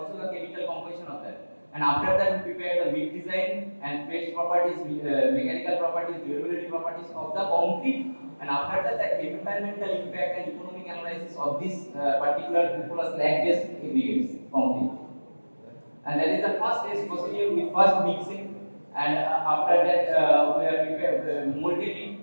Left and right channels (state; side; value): inverted; both; correlation -1.00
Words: the chemical composition of that. And after that we prepare the big design and phase properties, mechanical properties, durability properties of the concrete, and after that the environmental impact and economic analysis of this particular cupola slag based aggregates concrete. And that is the first stage procedure with first mixing, and after that we are prepared molded it